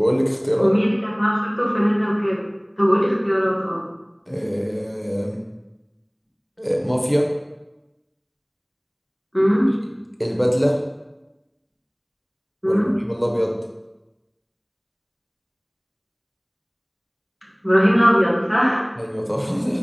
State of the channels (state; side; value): identical; both; correlation 1.00